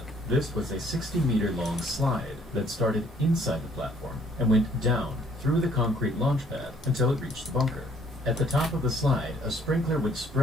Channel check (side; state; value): both; normal; correlation 0.62